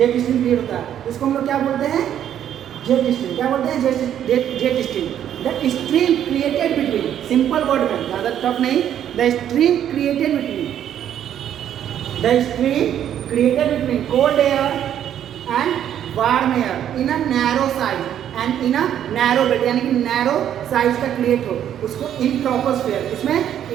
stream create होता है। इसको हम लोग क्या बोलते हैं? Jet stream. क्या बोलते हैं? Jet stream. The stream created between, simple word में, ज़्यादा टफ नहीं, the stream created between cold air and warm air in a narrow size and in a narrow belt, यानी कि नैरो साइज का create हो, उसको इन ट्रोपोस्फेयर, इसमें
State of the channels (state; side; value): quieter; left; 10.2 dB